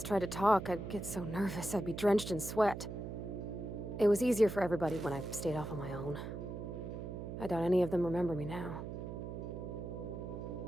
tried to talk, I'd get so nervous I'd be drenched in sweat. It was easier for everybody when I stayed off on my own. I doubt any of them remember me now.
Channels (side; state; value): right; noise; hum, 7 dB below the sound